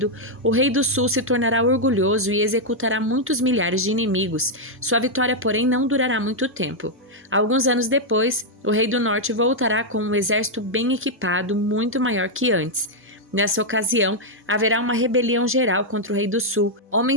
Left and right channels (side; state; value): both; normal; correlation -0.02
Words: o rei do sul se tornará orgulhoso e executará muitos milhares de inimigos. Sua vitória, porém, não durará muito tempo. Alguns anos depois, o rei do norte voltará com um exército bem equipado, muito maior que antes. Nessa ocasião, haverá uma rebelião geral contra o rei do sul.